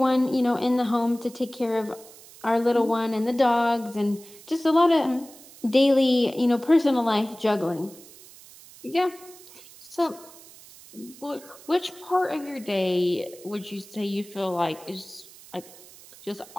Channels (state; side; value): noise; right; hiss, 21 dB below the sound